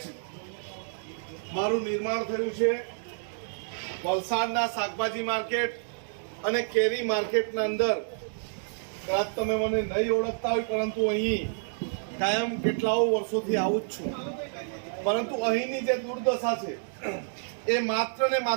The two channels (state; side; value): silent; left; digital silence